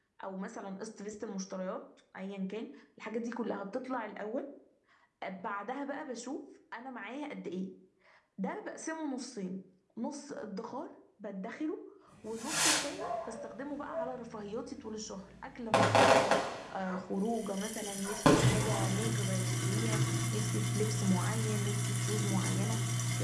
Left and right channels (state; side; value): identical; both; correlation 1.00